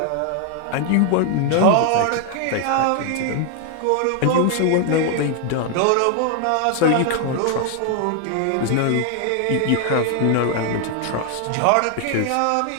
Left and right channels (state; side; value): different; both; correlation 0.00